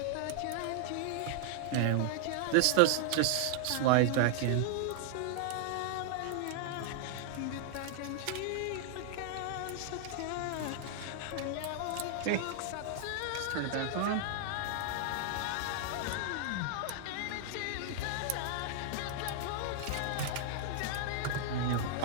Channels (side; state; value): both; different; correlation -0.01